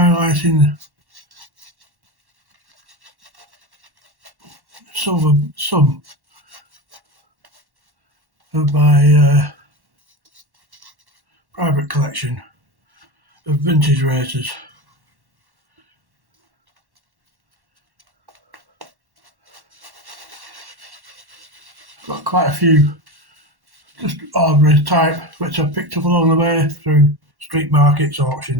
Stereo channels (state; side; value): late; left; 1.1 ms